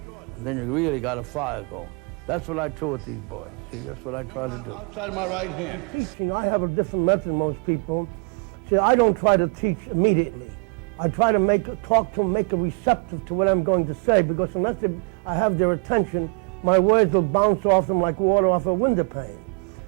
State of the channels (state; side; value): quieter; left; 32.2 dB